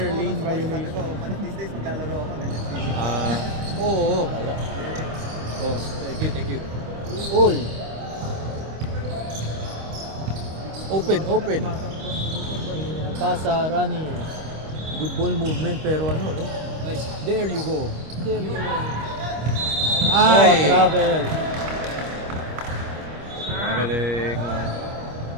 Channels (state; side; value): late; left; 25 ms